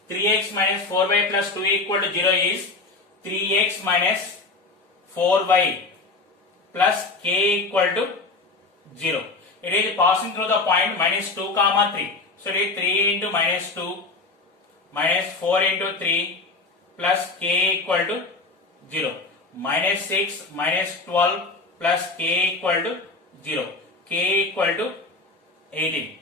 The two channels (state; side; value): quieter; right; 3.6 dB